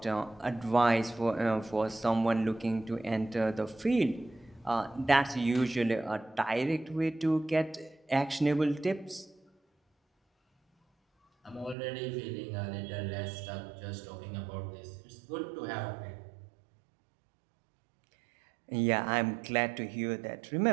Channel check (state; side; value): drops out; left; at 11.8 s